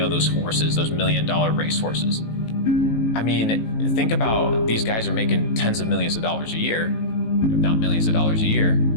horses, those $1 million race horses. I mean, think about these guys are making tens of millions of dollars a year, if not millions of dollars a year,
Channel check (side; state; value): right; late; 18 ms